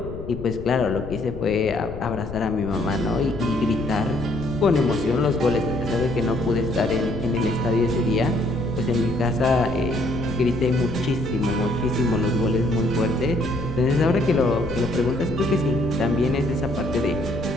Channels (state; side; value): noise; left; rumble, 11 dB below the sound